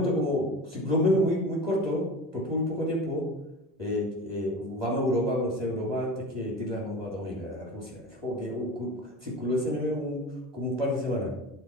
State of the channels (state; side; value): normal; both; correlation 0.33